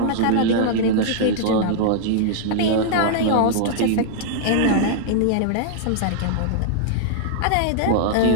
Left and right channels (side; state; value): both; different; correlation -0.01